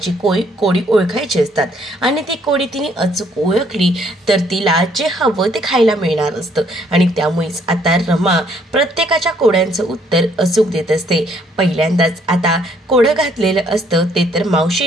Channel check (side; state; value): both; normal; correlation 0.66